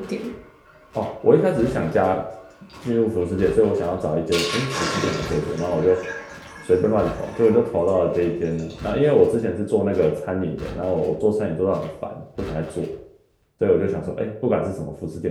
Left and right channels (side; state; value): both; identical; correlation 1.00